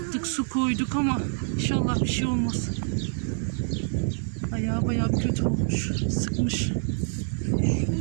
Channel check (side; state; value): left; silent; 61 dB below the other